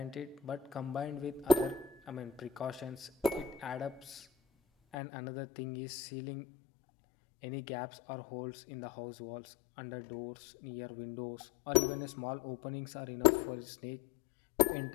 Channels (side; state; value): right; drops out; at 5.0 s